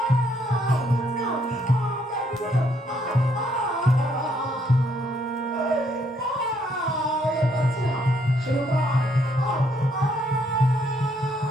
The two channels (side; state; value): both; normal; correlation 0.70